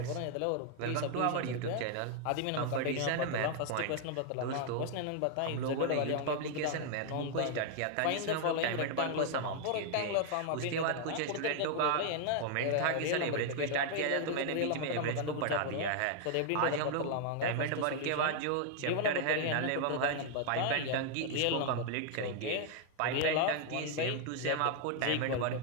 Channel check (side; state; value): both; different; correlation 0.00